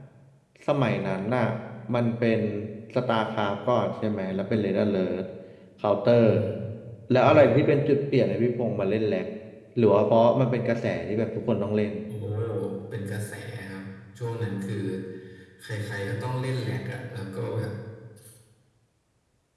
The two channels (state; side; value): identical; both; correlation 1.00